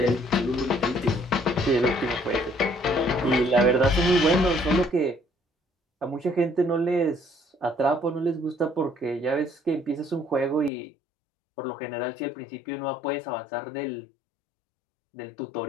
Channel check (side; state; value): right; drops out; at 10.7 s